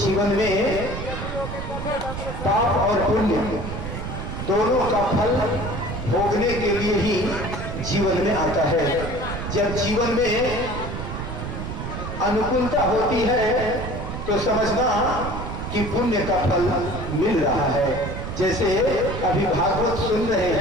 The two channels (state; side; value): noise; right; rumble, 6 dB below the sound